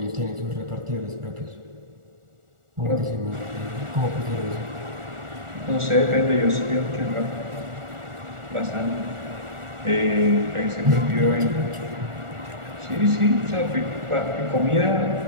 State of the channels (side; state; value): left; late; 1.4 ms